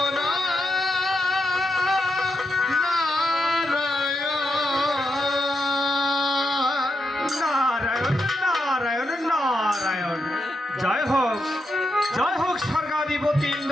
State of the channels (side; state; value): both; normal; correlation 0.83